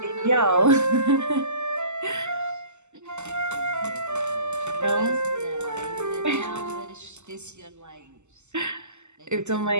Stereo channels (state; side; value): late; left; 0.83 ms